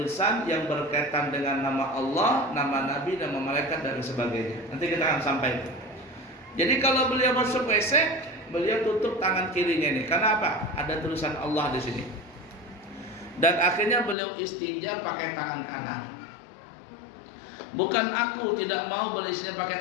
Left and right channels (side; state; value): right; drops out; at 14.2 s